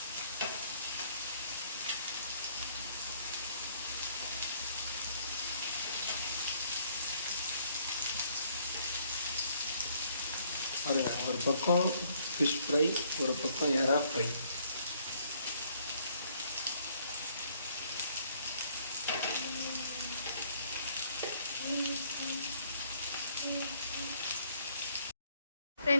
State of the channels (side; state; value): both; inverted; correlation -0.65